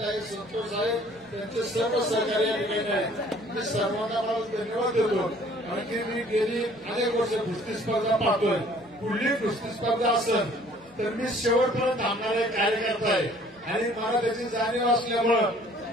आहे, संतोष साहेब त्यांचे सर्व सहकारी या ठिकाणी आहेत. मी सर्वांना मला धन्यवाद देतो. कारण की मी गेली अनेक वर्ष कुस्ती स्पर्धा पाहतोय. पुढली कुस्ती स्पर्धा असेल तर मी शेवटपर्यंत थांबणारा कार्यकर्ता आहे आणि मला त्याची जाणीव असल्यामुळं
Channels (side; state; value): both; normal; correlation 0.55